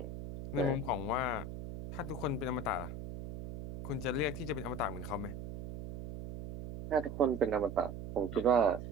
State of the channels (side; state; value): right; noise; hum, 8 dB below the sound